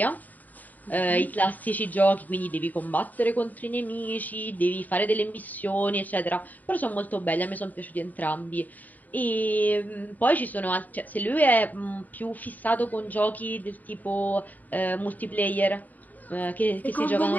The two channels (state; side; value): late; right; 0.082 ms